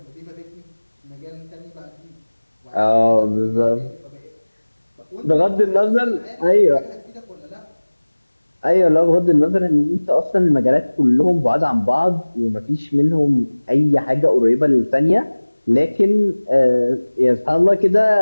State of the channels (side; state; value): both; inverted; correlation -1.00